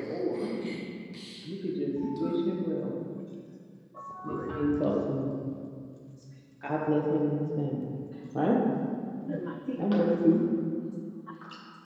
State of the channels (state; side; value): identical; both; correlation 1.00